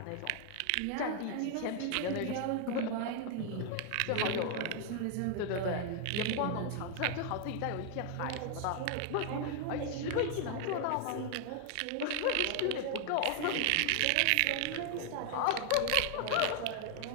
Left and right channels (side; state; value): both; different; correlation 0.00